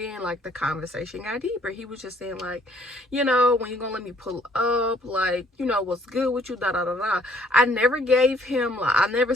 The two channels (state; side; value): normal; both; correlation 0.62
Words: like the conversation got deeper. He was just saying like, when you gonna let me pull up, like, what's good with you, da da da da. I never gave him, like, I never